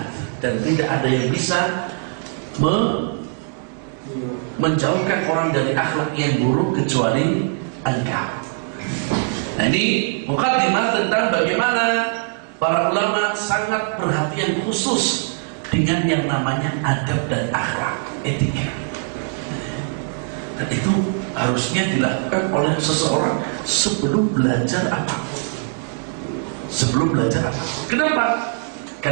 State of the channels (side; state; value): left; silent; 55 dB below the other